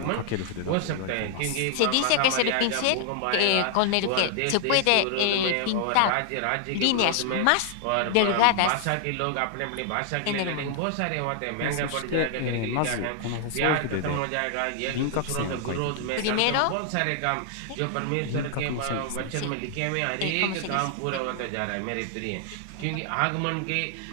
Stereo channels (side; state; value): both; different; correlation 0.00